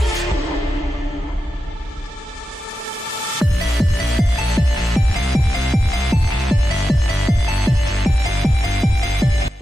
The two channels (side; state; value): both; normal; correlation 0.90